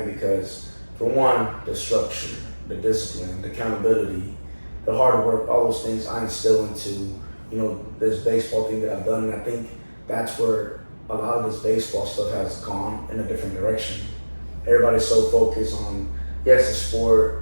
because for one, the structure, the discipline, the accountability, the hard work, all those things I instill into, you know, this baseball thing that I've done. And I think that's where a lot of this baseball stuff has gone in a different direction. Everybody's so focused on, yes, the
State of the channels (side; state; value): both; inverted; correlation -1.00